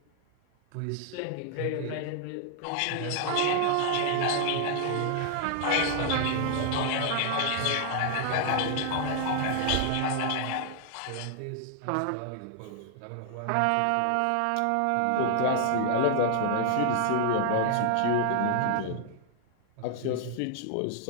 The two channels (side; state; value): both; different; correlation 0.00